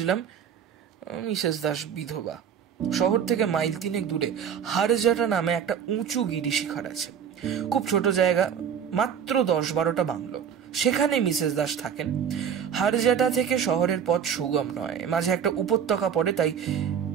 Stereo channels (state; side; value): quieter; left; 8.0 dB